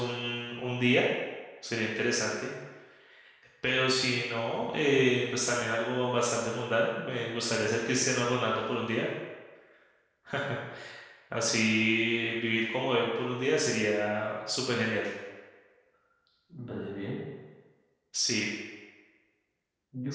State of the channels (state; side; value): identical; both; correlation 1.00